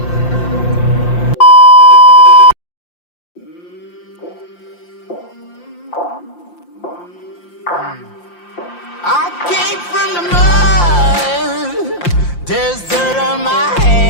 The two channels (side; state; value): right; late; 5.7 ms